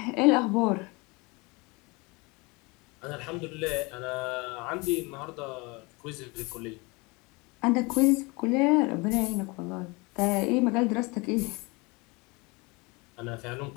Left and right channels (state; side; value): quieter; right; 26.7 dB